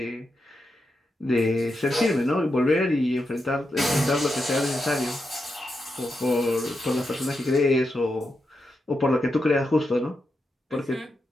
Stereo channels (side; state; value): both; normal; correlation 0.86